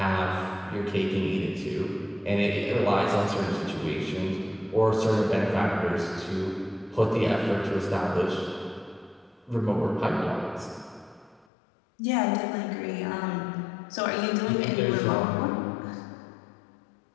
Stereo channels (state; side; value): drops out; right; at 11.5 s